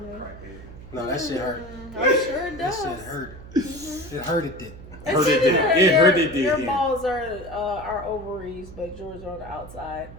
No, that shit hurt. I'm sure it That does. shit hurt. It hurted it. Hurt it did. It hurt it did. Your Yeah. balls are ovaries, but yours are on the outside.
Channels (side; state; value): right; noise; hum, 16 dB below the sound